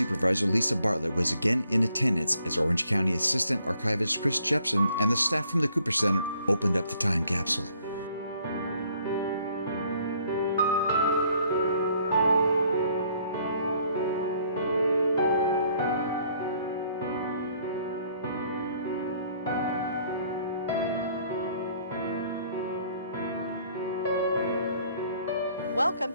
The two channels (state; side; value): inverted; both; correlation -0.64